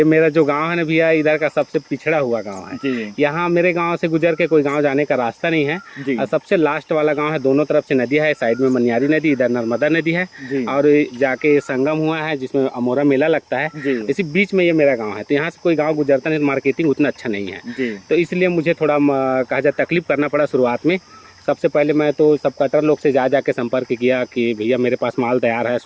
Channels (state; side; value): identical; both; correlation 1.00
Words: मेरा जो गाँव है ना भैया, इधर का सबसे पिछड़ा हुआ गाँव है। यहाँ मेरे गाँव से गुजर के कोई गाँव जाने का रास्ता नहीं है, और सबसे लास्ट वाला गाँव है। दोनों तरफ से नदी है, साइड में मनियारी नदी, इधर नर्मदा नदी है, और जाके संगम हुआ है जिसमें अमोरा मेला लगता है। इसी बीच में ये मेरा गांव है, तो यहाँ से कोई गांव गुजरता नहीं, मार्केटिंग उतना अच्छा नहीं है तो इसलिए मुझे थोड़ा कहा जाए तकलीफ करना पड़ा शुरुआत में। सबसे पहले मैं तो सब कटर लोग से जाके संपर्क किया कि भैया मेरे पास माल तैयार है,